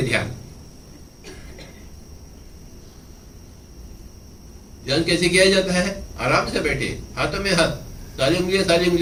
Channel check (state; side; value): identical; both; correlation 1.00